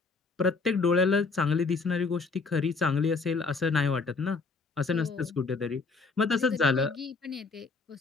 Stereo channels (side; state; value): right; quieter; 4.3 dB